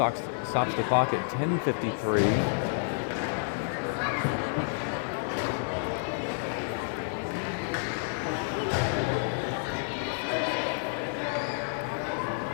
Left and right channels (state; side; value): silent; right; 58 dB below the other